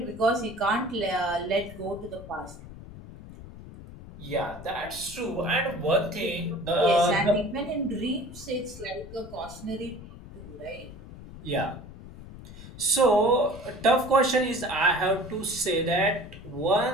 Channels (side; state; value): left; noise; rumble, 15 dB below the sound